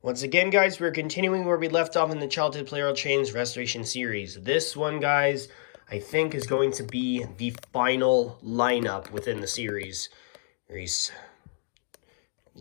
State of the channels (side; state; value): right; silent; 59 dB below the other